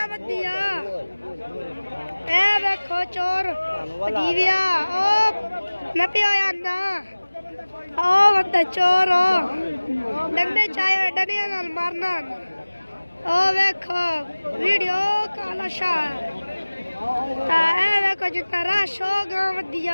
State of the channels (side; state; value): both; inverted; correlation -1.00